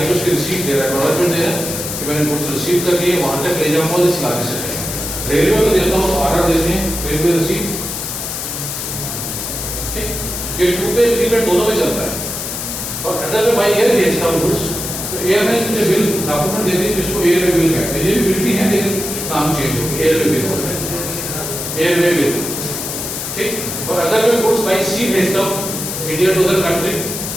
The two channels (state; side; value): noise; left; hiss, 5 dB below the sound